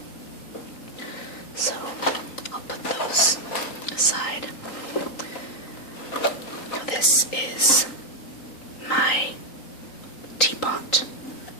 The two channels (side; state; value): right; late; 3.9 ms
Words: So I'll put those aside. Now this is my teapot,